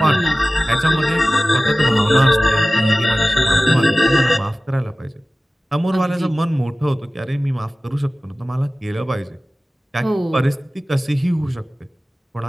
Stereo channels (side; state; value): both; normal; correlation 0.97